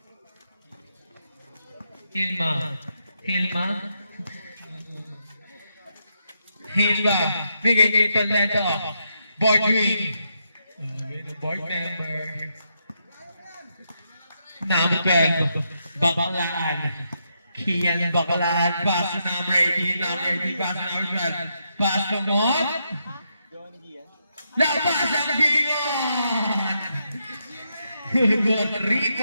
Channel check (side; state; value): both; inverted; correlation -0.81